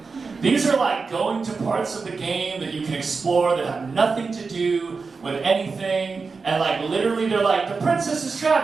These are like going to parts of the game that you can explore that have nothing to do with anything, and like literally they're like, the princess is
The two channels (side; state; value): left; quieter; 4.6 dB